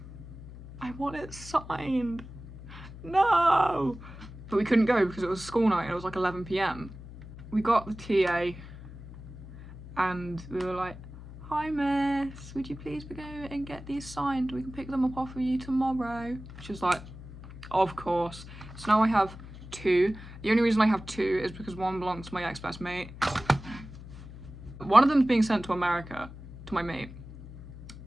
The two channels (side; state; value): left; noise; hum, 14 dB below the sound